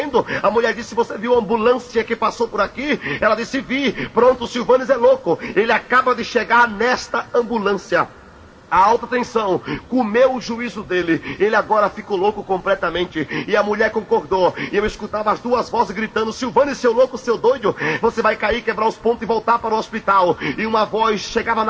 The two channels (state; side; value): identical; both; correlation 1.00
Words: A mulher disse: você viu a ambulância que passou por aqui? Ela disse: vi. Pronto, o Silvanes é louco. Ele acaba de chegar nesta ambulância. A alta tensão comeu o juízo dele. Ele agora ficou louco completamente. E a mulher concordou. E eu escutava as duas vozes gritando: Silvanes, seu louco, seu doido, você vai cair, quebrar os pontos e voltar para o hospital. E uma voz chegava